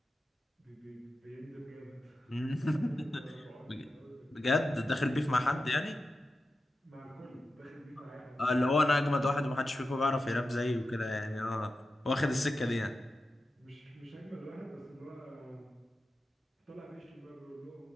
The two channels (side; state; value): both; normal; correlation 0.92